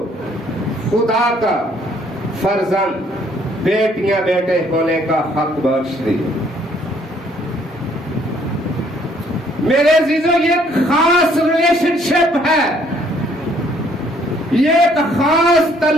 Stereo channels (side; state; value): both; normal; correlation 0.64